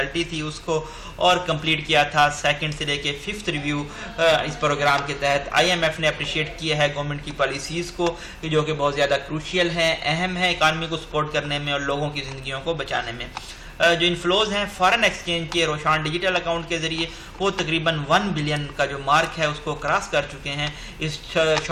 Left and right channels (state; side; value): identical; both; correlation 1.00